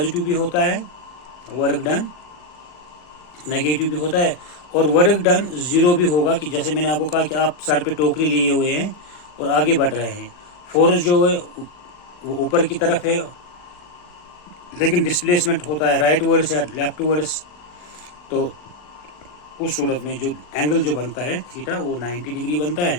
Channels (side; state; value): right; late; 40 ms